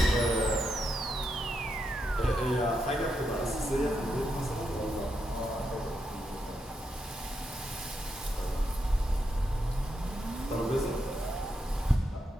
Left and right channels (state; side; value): normal; both; correlation 0.83